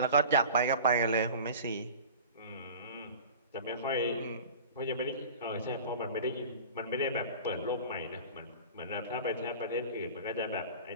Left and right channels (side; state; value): both; inverted; correlation -0.37